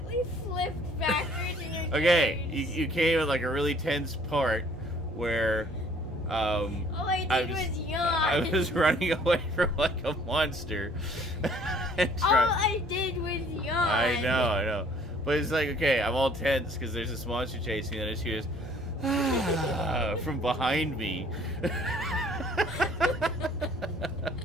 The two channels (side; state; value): both; normal; correlation 0.57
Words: flipped backwards in your Okay, carriage. you came at like a really tense part where All I did was yawn. I was running away from like a monster. And All I did was yawn. I know. But it's like, okay, I'm all tense because there's this monster chasing me, and I just hear this from behind me.